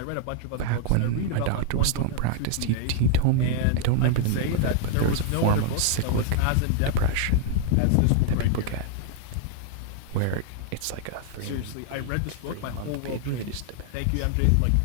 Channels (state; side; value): different; both; correlation 0.00